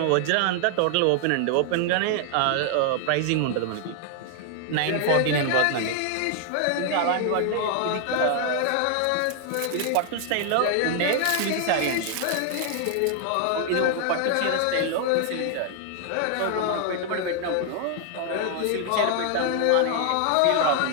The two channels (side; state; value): both; different; correlation 0.00